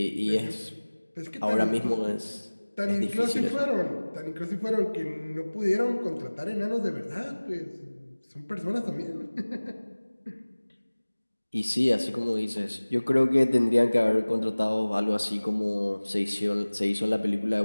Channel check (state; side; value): inverted; both; correlation -1.00